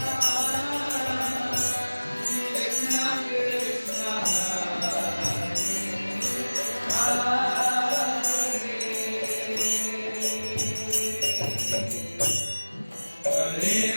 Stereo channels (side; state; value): both; inverted; correlation -1.00